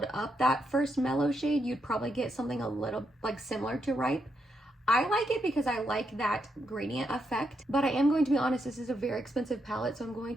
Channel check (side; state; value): both; normal; correlation 0.81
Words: up that first mellow shade, you'd probably get something a little like similar to Ripe. I like it because I like that gradient effect, but I am going to be honest, this is a very expensive palette, so I'm going